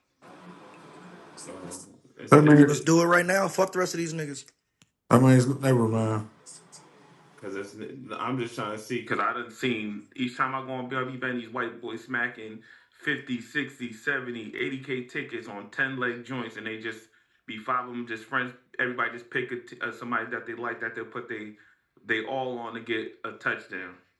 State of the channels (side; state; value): both; identical; correlation 1.00